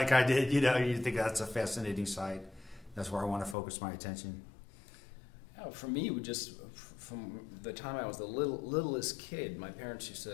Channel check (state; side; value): drops out; right; at 3.6 s